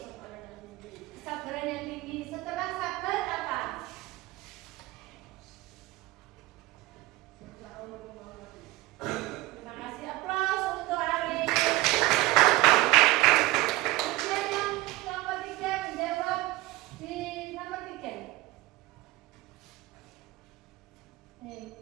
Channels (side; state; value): left; quieter; 19.1 dB